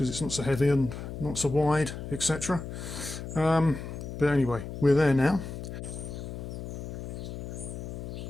it's not so heavy and not so wide, etc. But anyway, we're there now.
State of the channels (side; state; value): left; noise; hum, 8 dB below the sound